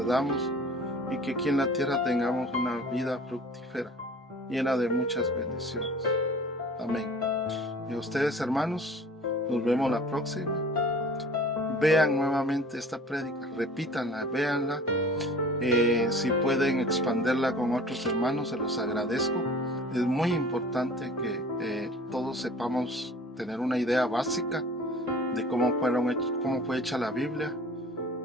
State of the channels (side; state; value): both; normal; correlation 0.45